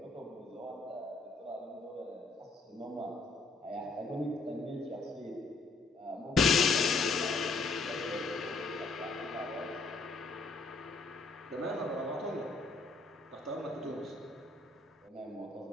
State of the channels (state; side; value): quieter; right; 3.7 dB